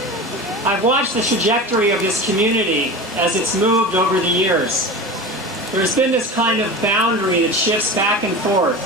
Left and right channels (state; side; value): normal; both; correlation 0.30